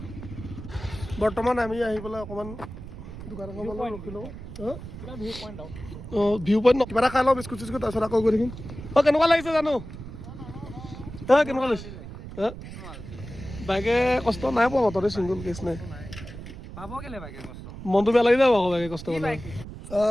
বৰ্তমান আমি আহি পেলাই অকণমান দোকান এখন ৰখি লওঁ ভিউ পইণ্ট কিবা এটা খাই লওঁ বিস্কুট চিস্কুট তাৰপিছত আকৌ গৈ থাকিম কেনেকুৱা লাগিছে জানো কেনেকুৱা লাগিছে বাইকে কষ্ট নাই পোৱা মততে চিংগল কেছ নাই মনটো বেয়া লাগি যাব আকৌ বাইকে কষ্ট কৰিলে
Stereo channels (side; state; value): right; noise; rumble, 12 dB below the sound